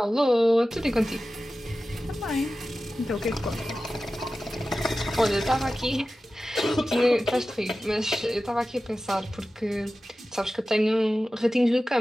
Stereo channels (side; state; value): both; normal; correlation 0.95